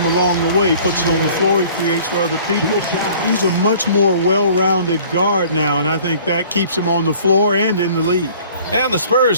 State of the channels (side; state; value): both; inverted; correlation -0.51